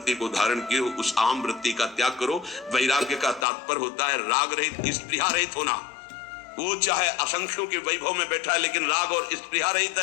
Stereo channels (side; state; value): right; drops out; at 3.5 s